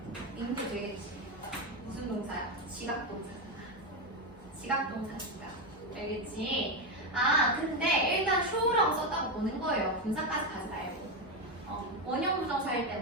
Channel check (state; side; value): normal; both; correlation 0.11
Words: 인도 되겠지. 무슨 동사야? 지각동사잖아. 지각동사니까. 알겠지? 아, 근데 일단 show라고 썼다고 보는 거예요. 분사까지 가지 말고. 원형 부정사일